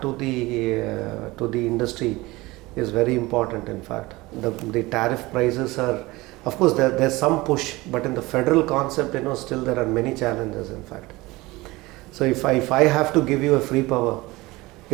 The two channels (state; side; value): quieter; left; 21.0 dB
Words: to the industry is very important. In fact, the tariff prices are, of course, there's some push, but in the federal concept, still there are many challenges. In fact, so if I have to give you a free power,